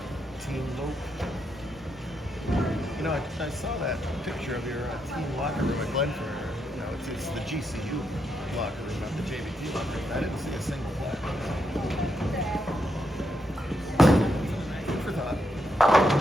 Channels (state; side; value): normal; both; correlation 0.81